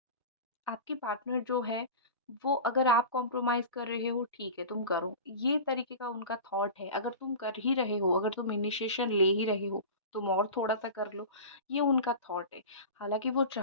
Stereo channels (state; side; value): inverted; both; correlation -0.31